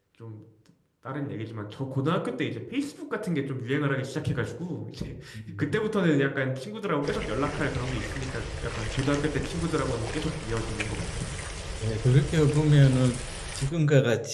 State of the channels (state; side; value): identical; both; correlation 1.00